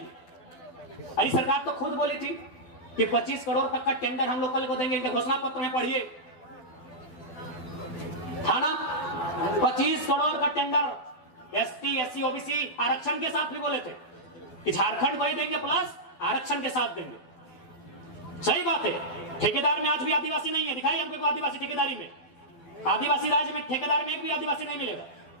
अरे सरकार तो खुद बोली थी कि 25 करोड़ तक का टेंडर हम लोग कल को देंगे, इनके घोषणा पत्र में पढ़िए, था ना? 25 करोड़ का टेंडर एसटी एससी ओबीसी आरक्षण के साथ भी बोले थे कि झारखंड को ही देंगे प्लस आरक्षण के साथ देंगे। सही बात है, ठेकेदार में आज भी आदिवासी नहीं है। दिखाई हमको आदिवासी ठेकेदारी में, आदिवासी राज्य में ठेकेदार में एक भी आदिवासी नहीं मिलेगा।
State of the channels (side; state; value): right; late; 12 ms